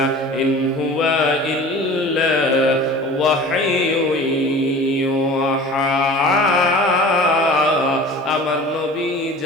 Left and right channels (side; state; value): both; normal; correlation 0.41